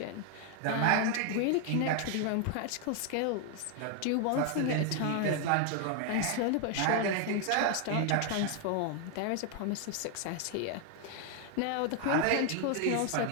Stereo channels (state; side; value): different; both; correlation 0.01